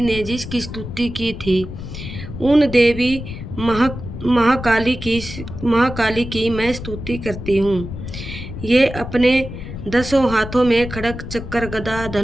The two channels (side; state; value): left; noise; rumble, 9 dB below the sound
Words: ने जिसकी स्तुति की थी, उन देवी महाकाली की मैं स्तुति करती हूँ। ये अपने 10 हाथों में खड़ग चक्र गदा